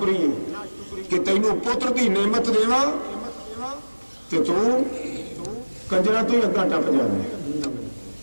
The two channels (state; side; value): inverted; both; correlation -1.00